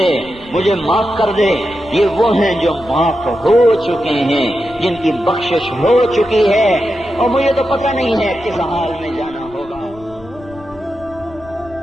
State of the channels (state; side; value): noise; left; rumble, 21 dB below the sound